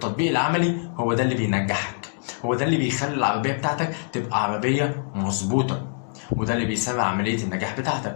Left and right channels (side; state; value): right; silent; digital silence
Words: العملي هو ده اللي بينجحك، هو ده اللي بيخلي العربية بتاعتك تبقى عربية مظبوطة، وده اللي بيسرع عملية النجاح